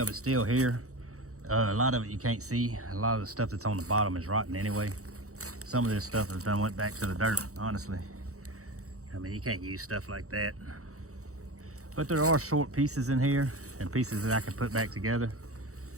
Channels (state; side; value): late; left; 0.65 ms